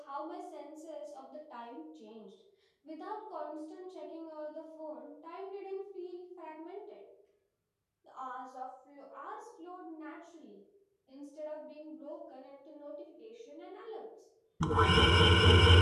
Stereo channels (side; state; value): both; identical; correlation 1.00